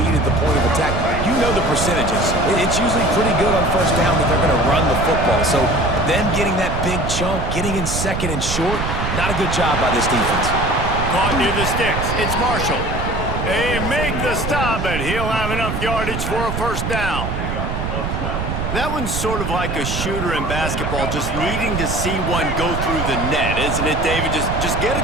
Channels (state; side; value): noise; right; rumble, 3 dB below the sound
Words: at the point of attack. You know the percentages. It's usually pretty good on first down that they're going to run the football. So them getting that big chunk, getting in second and short, not a good job by this defense. Caught near the sticks. It's Marshall. They make the stop, but he'll have enough yardage for a first down. That one's sort of like a shooter in basketball, just needing to see one go through the net, isn't it, David? Just get a